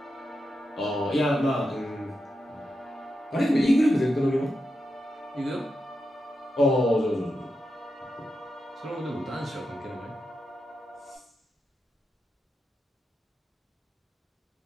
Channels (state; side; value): normal; both; correlation 0.88